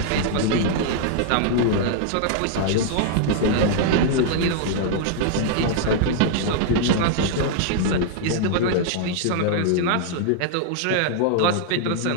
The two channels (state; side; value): different; both; correlation -0.01